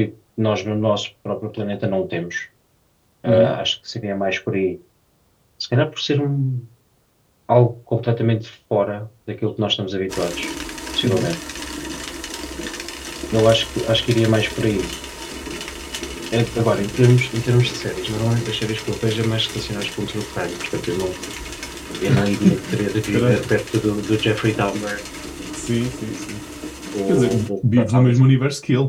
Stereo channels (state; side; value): identical; both; correlation 1.00